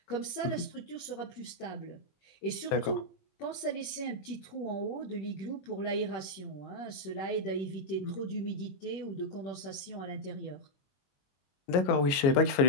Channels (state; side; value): late; right; 22 ms